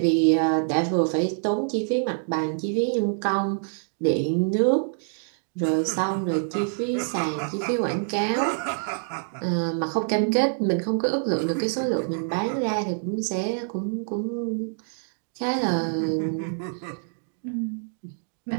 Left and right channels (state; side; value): silent; left; digital silence